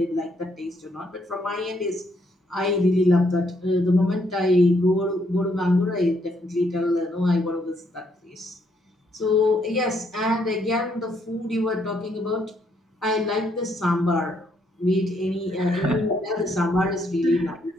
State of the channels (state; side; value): normal; both; correlation 0.72